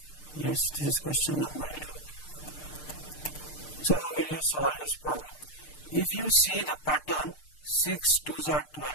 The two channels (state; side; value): late; right; 6.6 ms